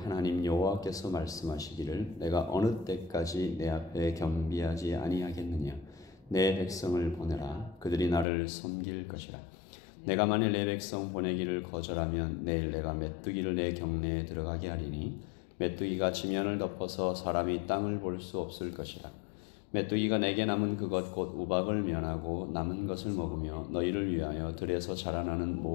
여호와께서 말씀하시기를 내가 어느 때까지 내 앞에 겸비하지 아니하겠느냐. 내 백성을 보내라. 그들이 나를 섬길 것이라. 내가 만일 내 백성 보내기를 거절하면 내일 내가 메뚜기를 내 경내에 들어가게 하리니 메뚜기가 지면을 덮어서 사람이 땅을 볼 수 없을 것이라. 메뚜기가 내게 남은 그것 곧 우박을 면하고 남은 것을 먹으며 너희를 위하여 들에서 자라나는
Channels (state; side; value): drops out; right; at 8.2 s